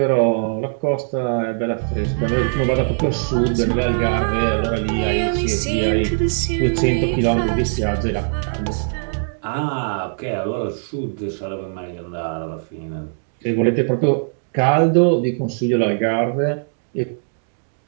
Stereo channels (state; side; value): silent; left; digital silence